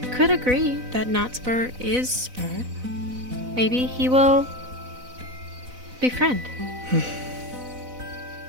could agree that not Spur is Spur. Maybe he will befriend.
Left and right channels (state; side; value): late; left; 4.0 ms